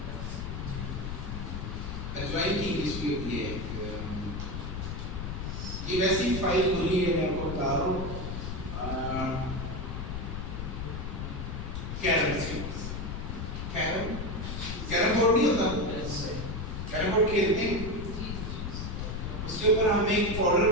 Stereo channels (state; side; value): noise; left; rumble, 5 dB below the sound